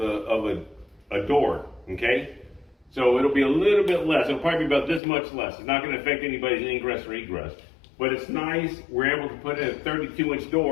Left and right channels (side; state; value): right; drops out; at 5.0 s